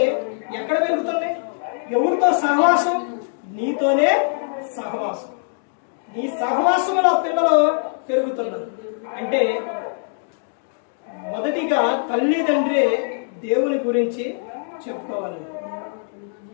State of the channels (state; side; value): silent; right; digital silence